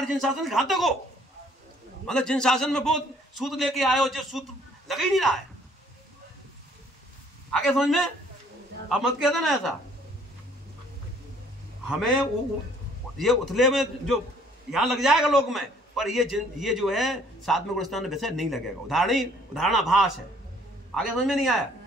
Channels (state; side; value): normal; both; correlation 0.60